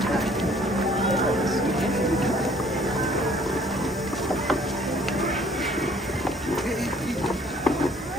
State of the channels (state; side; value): normal; both; correlation 0.58